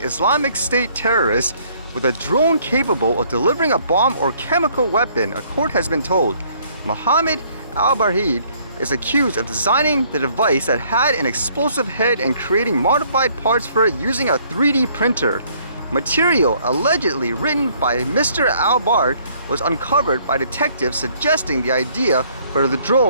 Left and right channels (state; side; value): inverted; both; correlation -0.63